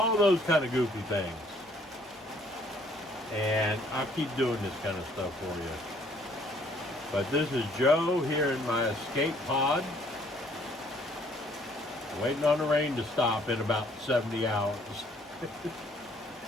those kind of goofy things. And I'll keep doing this kind of stuff for you. But this is Joe here in my escape pod. Waiting on the rain to stop in about 70 hours.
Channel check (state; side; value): normal; both; correlation 0.62